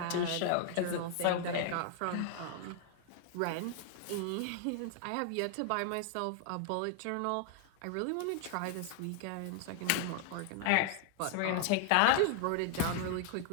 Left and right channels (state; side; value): different; both; correlation 0.00